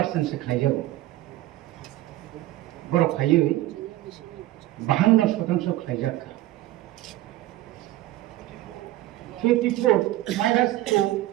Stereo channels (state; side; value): quieter; left; 15.8 dB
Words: সে খাই যাব বড় খাইয়ে 52% খাই যাকা 54 মাইনাস 2